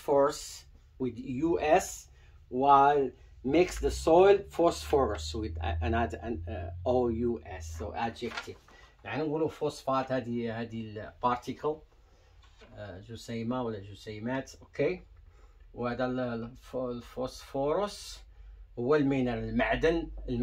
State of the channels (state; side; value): identical; both; correlation 1.00